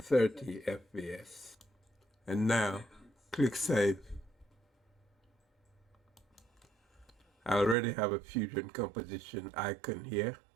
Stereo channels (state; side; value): drops out; left; at 7.8 s